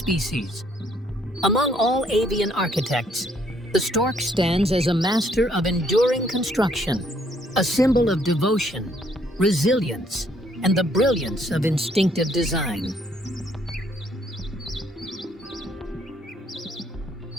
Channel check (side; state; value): both; normal; correlation 0.67